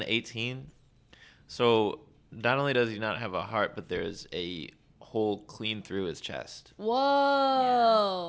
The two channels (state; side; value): identical; both; correlation 1.00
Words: 18. So not only does he not have a heart, but there's a hole clean through his chest.